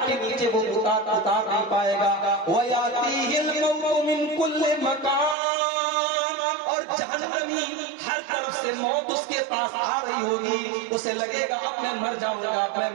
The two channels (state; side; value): drops out; left; at 5.4 s